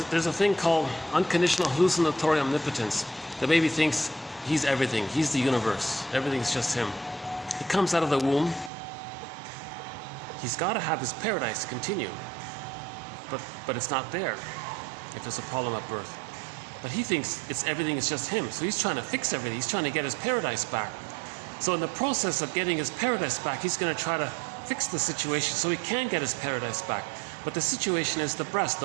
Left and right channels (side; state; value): left; drops out; at 8.7 s